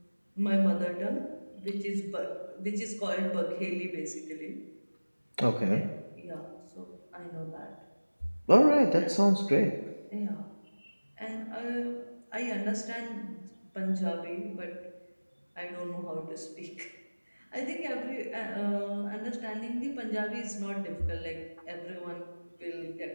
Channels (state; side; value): inverted; both; correlation -1.00